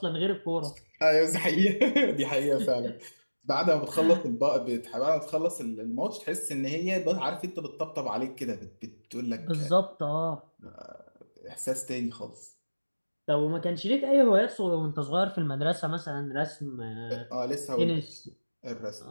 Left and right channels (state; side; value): inverted; both; correlation -1.00